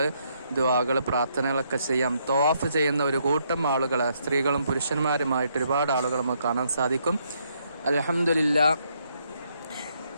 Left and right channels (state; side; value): inverted; both; correlation -0.73